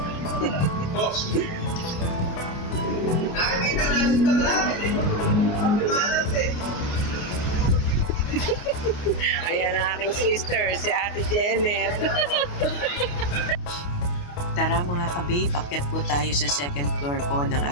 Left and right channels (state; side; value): late; right; 28 ms